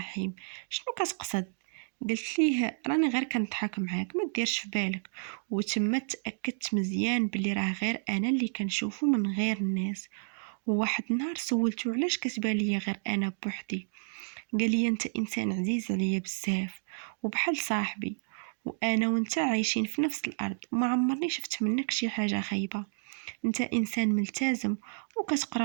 شنو كتقصد؟ قلت ليه راني غير كنضحك معاك ما ديرش في بالك. وتما تاكدت مزيان بلي راه غير انا اللي كنشوفه من غير الناس. وواحد النهار سولته علاش كتبان ليا غير انا بوحدي؟ قال لي انت انسان عزيز عليا بزاف وبحال صاحبي، وانا وانت عايشين في نفس الارض وما عمرني شفت منك شي حاجه خايبه. انت انسان ملتزم وكتقرا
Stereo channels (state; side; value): silent; left; digital silence